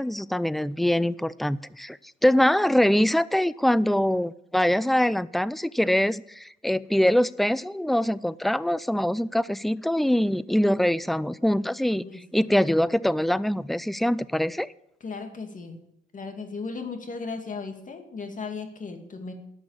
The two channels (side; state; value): both; normal; correlation 0.98